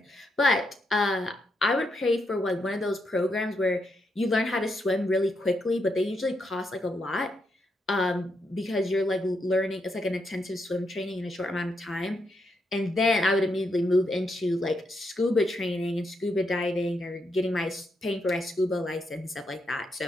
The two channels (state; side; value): normal; both; correlation 0.81